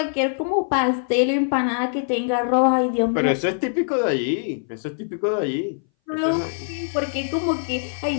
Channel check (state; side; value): silent; right; 60 dB below the other